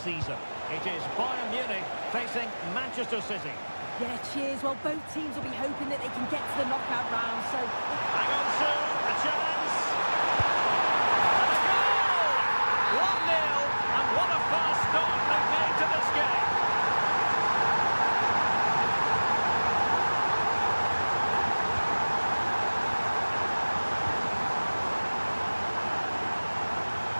It is Bayern Munich facing Manchester City. Yeah, cheers. Well, both teams will be hoping that they can get to the knockout round, so... Hang on, Sue, a chance! And a goal! 1-0, and what a fast start they've made to this game.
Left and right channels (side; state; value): both; inverted; correlation -1.00